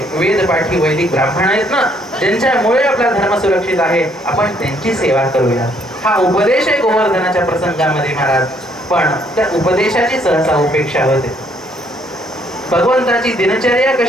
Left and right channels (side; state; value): both; normal; correlation 0.67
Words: वेदपाठी वैदिक ब्राह्मण आहेत ना, ज्यांच्यामुळे आपला धर्म सुरक्षित आहे, आपण त्यांची सेवा करूया. हा उपदेश आहे गोवर्धनाच्या प्रसंगामध्ये महाराज. पण त्या उपदेशाची सहसा उपेक्षा होते. भगवंताची दिनचर्या